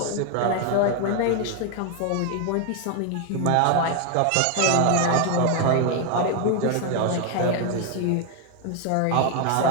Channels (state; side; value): different; both; correlation 0.01